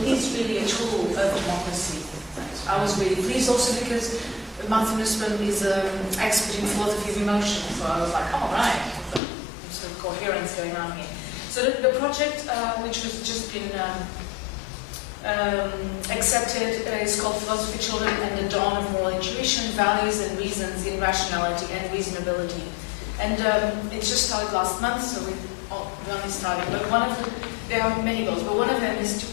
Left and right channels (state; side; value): drops out; right; at 9.2 s